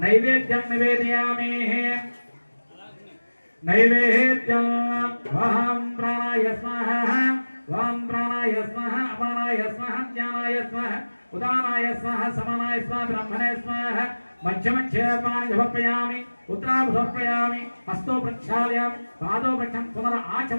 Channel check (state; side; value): inverted; both; correlation -1.00